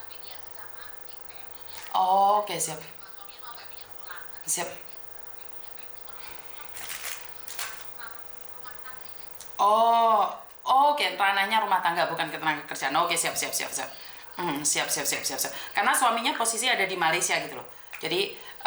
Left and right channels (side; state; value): both; identical; correlation 1.00